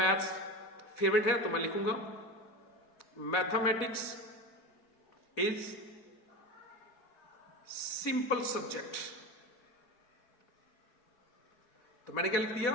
फेवरेट है, तो मैं लिखूंगा मैथमेटिक्स इज सिंपल सब्जेक्ट। तो मैंने क्या लिख दिया,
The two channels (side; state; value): right; late; 4.1 ms